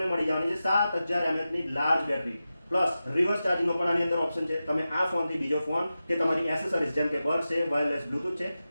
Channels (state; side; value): inverted; both; correlation -0.93